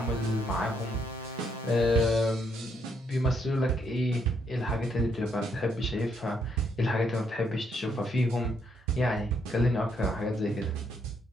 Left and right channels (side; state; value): both; normal; correlation 0.73